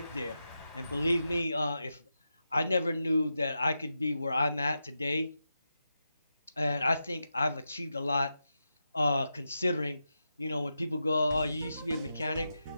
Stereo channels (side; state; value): both; inverted; correlation -0.89